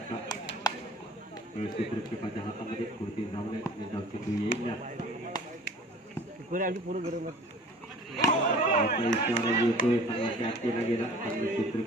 क्षेत्ररक्षकाच्या हातामध्ये कोणती धाव नाही धाव चेंडू येईल आता इशारा येतोय चांगला कॅच केला गेला चांगलं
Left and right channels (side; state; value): both; normal; correlation 0.46